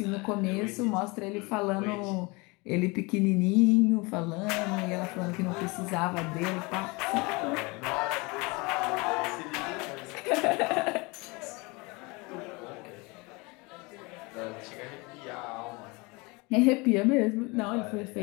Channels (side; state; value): right; quieter; 26.5 dB